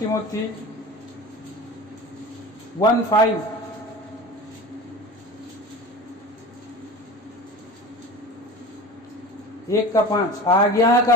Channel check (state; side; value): normal; both; correlation 0.34